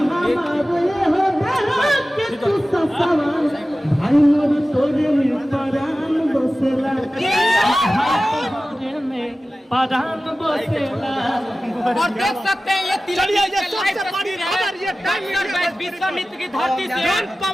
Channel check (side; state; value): both; normal; correlation 0.96